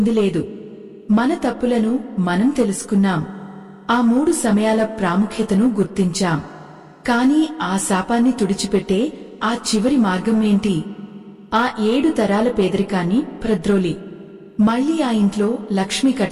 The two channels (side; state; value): both; identical; correlation 1.00